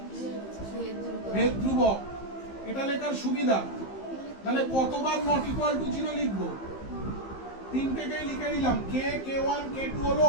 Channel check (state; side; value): late; right; 15 ms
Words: ভেদ ধ্রুবক এটা লেখার সুবিধা তাহলে কতবার নট ইকুয়াল টু 0 লিখবো তিনটেকেই লিখে নিলাম k k1 k2 হলো